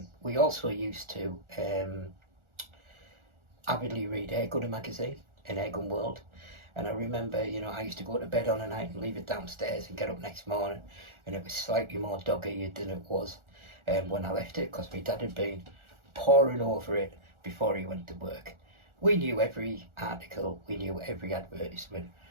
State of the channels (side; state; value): left; late; 1.4 ms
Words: We also used to avidly read Airgun magazine and Airgun World, and I remember I used to go to bed on a night and leave it downstairs and get up next morning, and it was slightly more dog-eared than it was when I left it, because my dad had been poring over it before he went to work. We knew every article, we knew every advertisement,